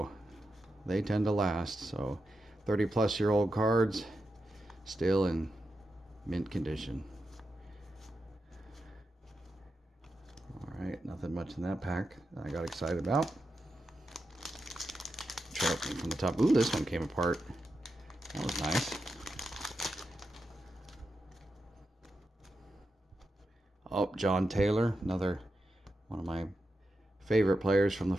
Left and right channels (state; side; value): normal; both; correlation 0.88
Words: they tend to last. So 30-plus-year-old cards still in mint condition. Alright, nothing much in that pack that I got excited about. Try opening from the top. Ooh, this one came apart. That was nice. Oh, John Taylor, another one of my favorite players from the